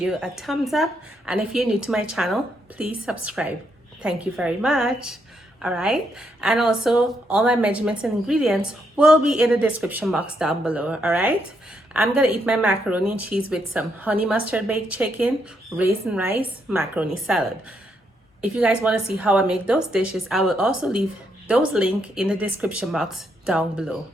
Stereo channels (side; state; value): both; normal; correlation 0.77